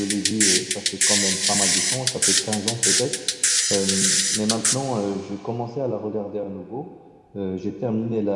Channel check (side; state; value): both; identical; correlation 1.00